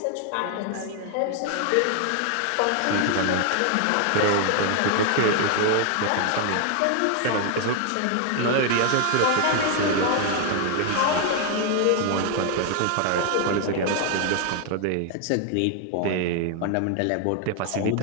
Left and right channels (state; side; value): different; both; correlation 0.00